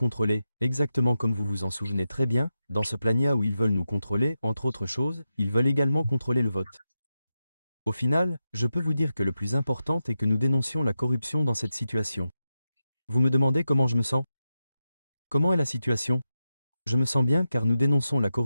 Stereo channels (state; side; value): inverted; both; correlation -0.90